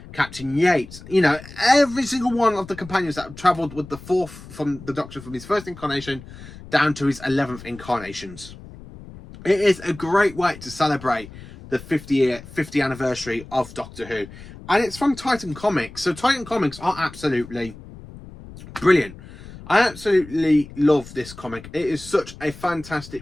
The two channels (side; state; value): left; noise; rumble, 17 dB below the sound